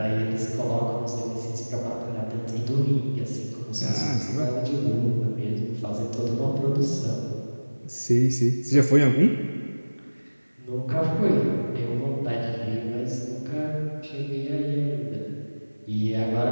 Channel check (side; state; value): both; inverted; correlation -1.00